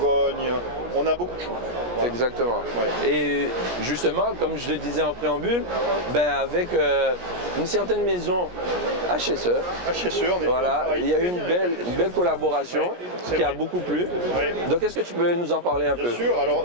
On a beaucoup de choses. Voilà. Exactement. Ouais. Et justement, comme je le disais en préambule, avec une certaine maison HSE, on est voilà, il y a eu une belle collaboration qui a beaucoup plu. Donc est-ce que tu peux nous en parler un peu? Bien sûr, alors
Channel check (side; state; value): left; late; 17 ms